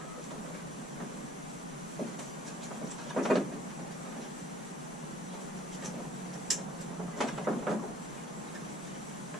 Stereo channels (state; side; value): normal; both; correlation 0.55